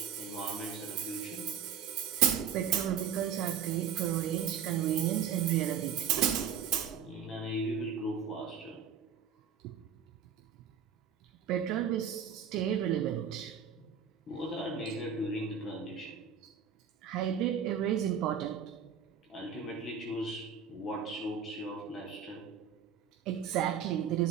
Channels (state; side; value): quieter; left; 7.7 dB